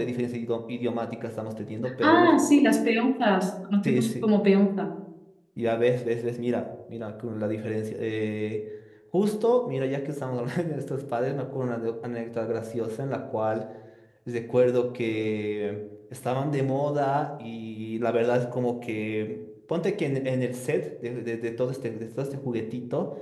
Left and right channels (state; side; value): identical; both; correlation 1.00